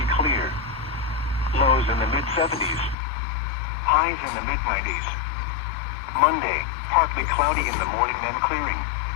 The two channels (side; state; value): right; drops out; at 3.0 s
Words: clear. Lows in the mid-70s. Highs in the mid-90s. Monday, partly cloudy in the morning then clearing.